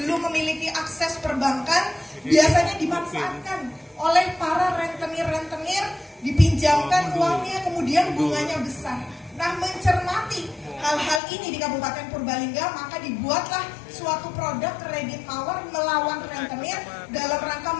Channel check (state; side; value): drops out; right; at 11.2 s